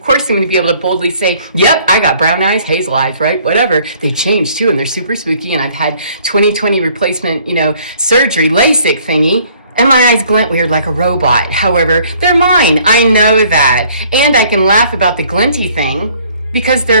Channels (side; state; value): both; inverted; correlation -0.59